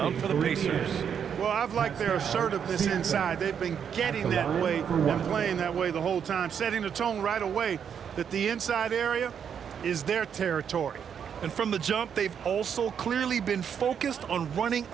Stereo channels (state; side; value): quieter; left; 7.8 dB